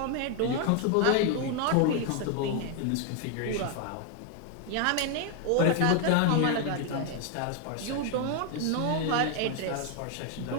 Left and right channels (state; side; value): different; both; correlation 0.01